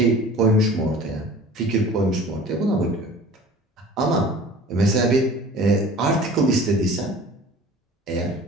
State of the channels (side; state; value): both; normal; correlation 0.44